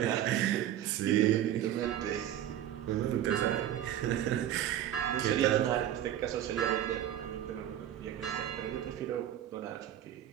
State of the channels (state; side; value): quieter; left; 11.5 dB